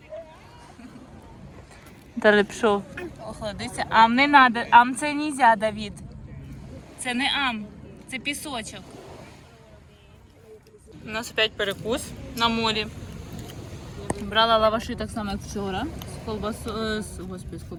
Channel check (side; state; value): both; identical; correlation 1.00